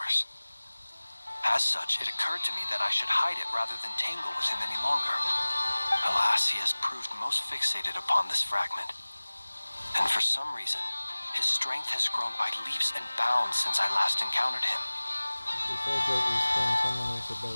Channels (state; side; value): inverted; both; correlation -1.00